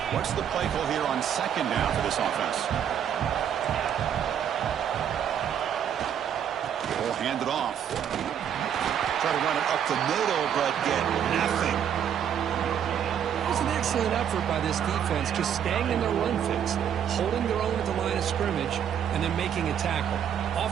What's the play call here on second down for this offense? We'll hand it off. Try to run it up the middle, but get nothing. It was an excellent effort by this defense, just staying in their run fix, holding their own at the line of scrimmage, and then making a tackle.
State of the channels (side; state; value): left; quieter; 8.9 dB